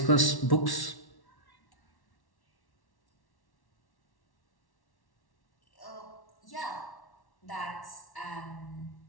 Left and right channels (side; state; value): right; late; 1.1 ms